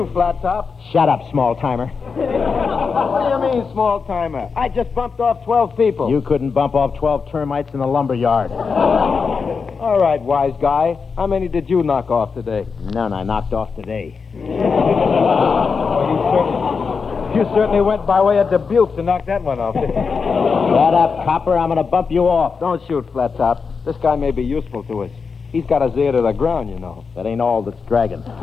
Flattop. Shut up, small-timer. What do you mean, small-timer? I just bumped off 12 people. You couldn't bump off 12 termites in the lumber yard. All right, wise guy. How many did you knock off today? None I knocked off today. You certainly went by way of Dubuque to knock that one off. Shut up, copper. I'm going to bump you off. Don't shoot, Flattop. This guy may be useful to us. He's got his ear to the ground, you know. That ain't all that's dragging.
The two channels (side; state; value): right; quieter; 5.3 dB